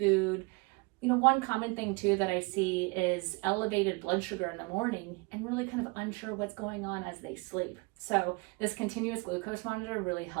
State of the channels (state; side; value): quieter; left; 28.6 dB